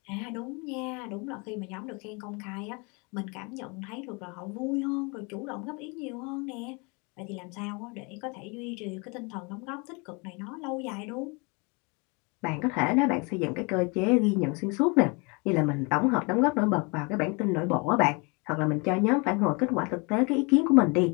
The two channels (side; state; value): right; quieter; 30.4 dB